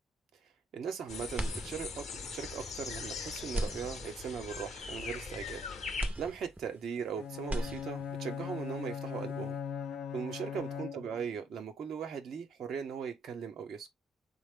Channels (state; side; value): normal; both; correlation 0.68